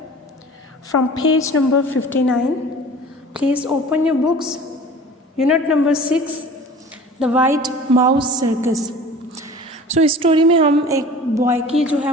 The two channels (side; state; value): both; normal; correlation 0.42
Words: from page number 59. Please open your books. Unit number 6, The White Mouse Circus. इस story में हम एक boy की जो है